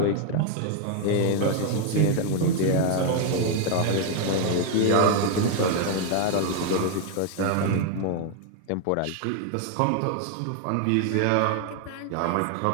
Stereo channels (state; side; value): different; both; correlation 0.01